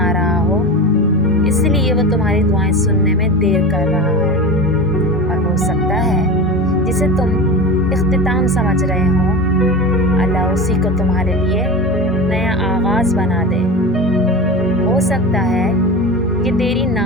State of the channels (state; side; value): normal; both; correlation 0.28